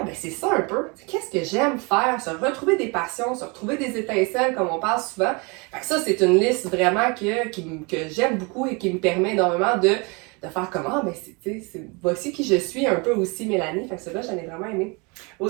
ben, c'est ça un peu. Qu'est-ce que j'aime faire? Se retrouver des passions, se retrouver des étincelles, comme on parle souvent. Fait que ça, c'est une liste vraiment que j'aime beaucoup et qui me permet énormément de faire comment, ben, voici qui je suis un peu aussi, Mélanie. Fait que ça, là, j'en ai vraiment aimé.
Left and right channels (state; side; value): quieter; left; 29.8 dB